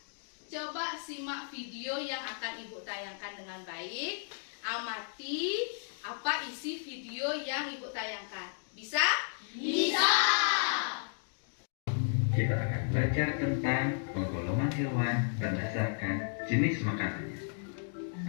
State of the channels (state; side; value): silent; right; digital silence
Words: coba simak video yang akan Ibu tayangkan dengan baik. Amati apa isi video yang Ibu tayangkan. Bisa? Bisa. Kita akan belajar tentang penggolongan hewan berdasarkan jenis makanannya.